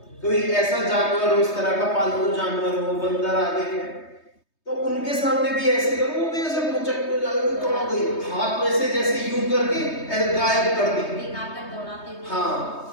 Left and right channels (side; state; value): right; late; 3.2 ms